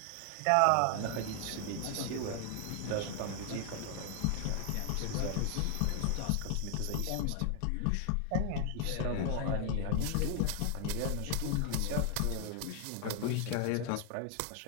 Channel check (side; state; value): both; different; correlation 0.00